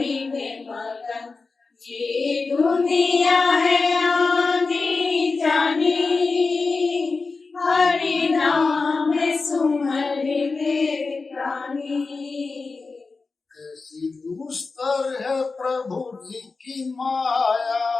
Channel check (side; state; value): right; quieter; 4.1 dB